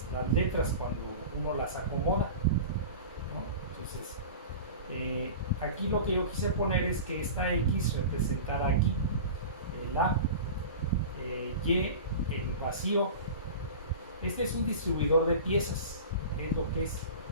letras cuando uno las acomoda, ¿no? Entonces, aquí lo que yo quise poner es que esta X representara aquí el A, Y, el vacío. Este es un distribuidor de piezas, es lo que es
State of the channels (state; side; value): inverted; both; correlation -0.34